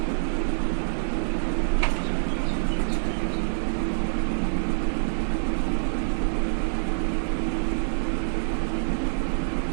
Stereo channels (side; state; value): left; silent; 60 dB below the other